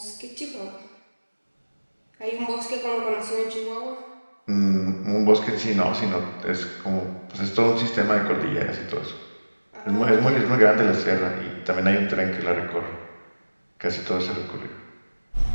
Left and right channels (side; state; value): both; inverted; correlation -1.00